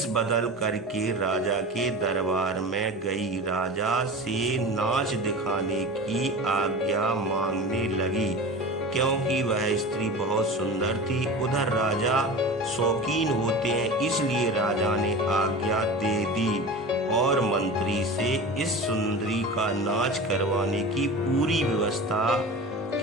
बदल करके राजा के दरबार में गई। राजा से नाच दिखाने की आज्ञा मांगने लगी, क्योंकि वह स्त्री बहुत सुंदर थी। उधर राजा शौकीन होते हैं, इसलिए राजा ने आज्ञा दे दी और मंत्री से इस सुंदरी का नाच करवाने की पूरी व्यवस्था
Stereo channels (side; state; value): both; normal; correlation 0.32